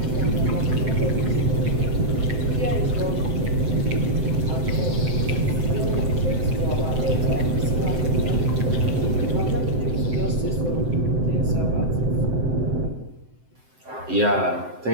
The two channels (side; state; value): left; late; 7.8 ms